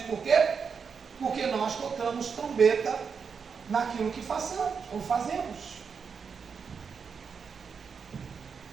por quê? Porque nós tocamos trombeta naquilo que façamos ou fazemos.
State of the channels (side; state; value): left; quieter; 6.0 dB